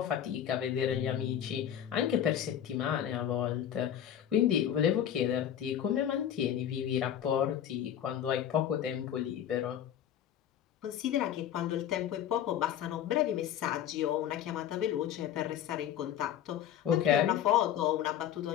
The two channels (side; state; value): right; quieter; 10.2 dB